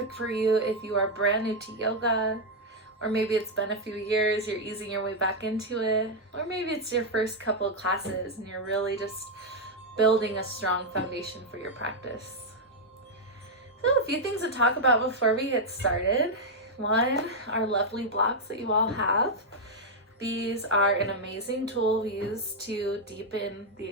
for you if you are brand new to yoga, or maybe it's been a few years, you're easing your way back into it, or maybe it's your first couple of classes and you're really just building a strong foundation for your practice. So a few things to talk about before we get started. One, our lovely blocks that you all have. These are an amazing tool we use to deepen the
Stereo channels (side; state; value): both; normal; correlation -0.01